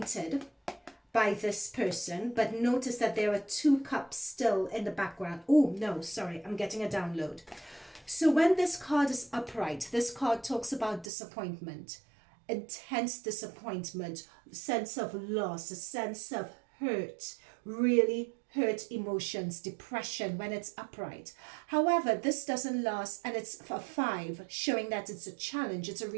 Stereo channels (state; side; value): drops out; left; at 11.1 s